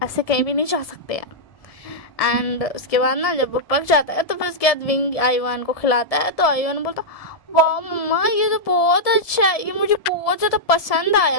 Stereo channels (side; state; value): right; late; 1.7 ms